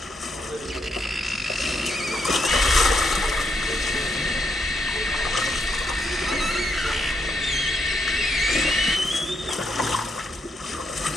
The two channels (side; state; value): both; normal; correlation 0.78